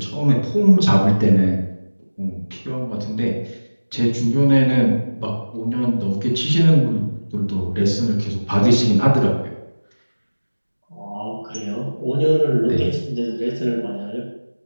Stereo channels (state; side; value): inverted; both; correlation -1.00